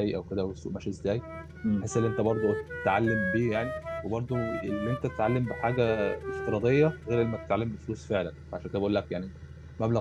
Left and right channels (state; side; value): identical; both; correlation 1.00